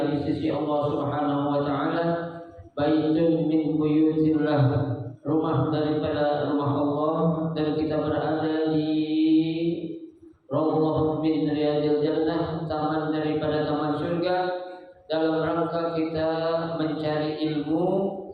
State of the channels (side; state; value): both; identical; correlation 1.00